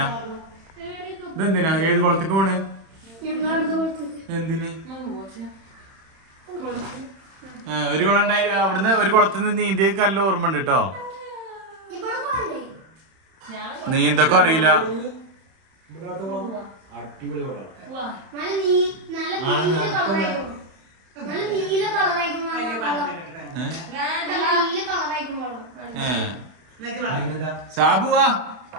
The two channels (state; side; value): late; left; 31 ms